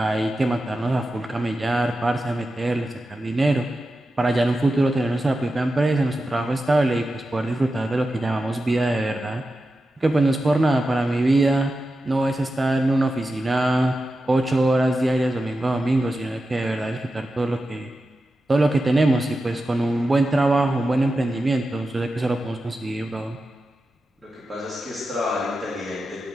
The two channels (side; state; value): both; normal; correlation 0.91